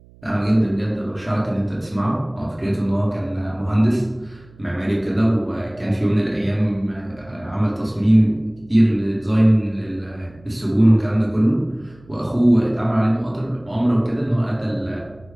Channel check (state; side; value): noise; right; hum, 26 dB below the sound